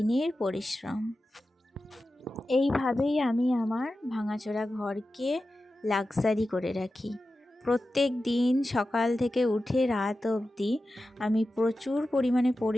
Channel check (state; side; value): normal; both; correlation 0.93